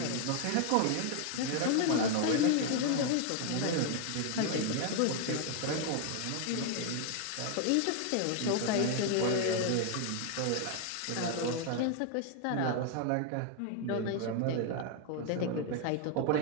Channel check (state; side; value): different; both; correlation 0.00